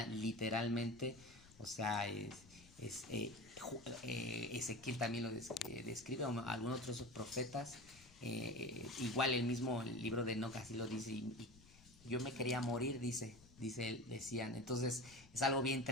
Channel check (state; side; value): noise; left; rumble, 23 dB below the sound